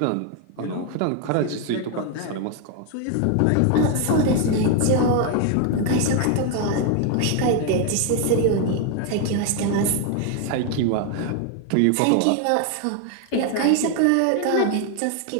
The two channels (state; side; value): different; both; correlation 0.01